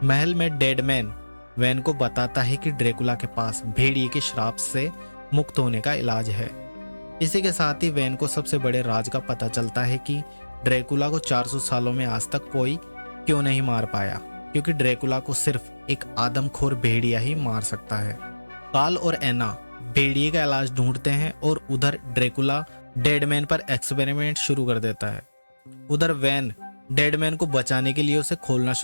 महल में डेडमैन वैन को बताता है कि ड्रैकुला के पास भेड़िए के श्राप से मुक्त होने का इलाज है, इसी के साथ ही वैन को सबसे बड़े राज का पता चलता है कि ड्रैकुला को 400 सालों में आज तक कोई क्यों नहीं मार पाया, क्योंकि ड्रैकुला को सिर्फ एक आदमखोर भेड़िया ही मार सकता है। कार्ल और एना भेड़िए का इलाज ढूंढते हैं और उधर ड्रैकुला डेडमैन पर एक्सपेरिमेंट शुरू कर देता है। उधर वैन डेडमैन को बचाने के लिए उसे खोलना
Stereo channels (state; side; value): inverted; both; correlation -1.00